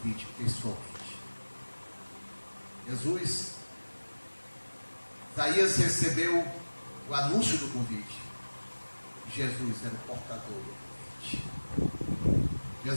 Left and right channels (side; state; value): both; inverted; correlation -1.00